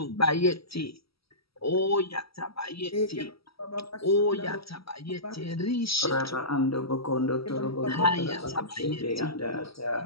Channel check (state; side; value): late; right; 0.76 ms